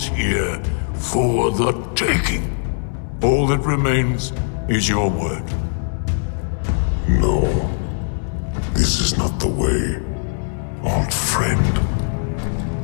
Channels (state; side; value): silent; right; digital silence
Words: here, for the taking. All that remains is your word. No, this is not the way, old friend.